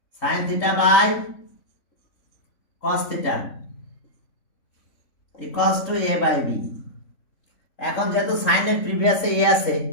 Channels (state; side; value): late; right; 3.6 ms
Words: sine theta by cos theta equals to A by B. এখন যেহেতু সাইনের প্রিভিয়াসে এ আছে,